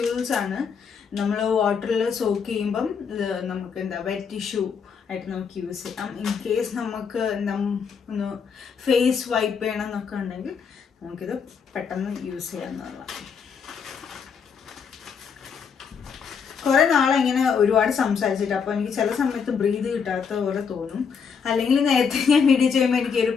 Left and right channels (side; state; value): right; quieter; 6.3 dB